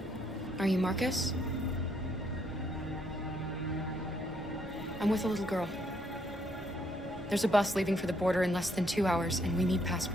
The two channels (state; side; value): normal; both; correlation 0.71